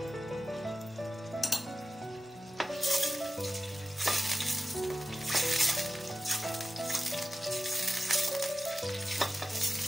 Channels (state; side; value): normal; both; correlation 0.94